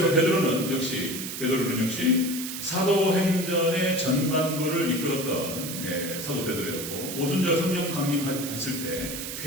베드로는 역시 사도행전의 전반부를 이끌었던 사도 베드로였고 오순절 성령 강림했을 때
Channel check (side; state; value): right; noise; hiss, 7 dB below the sound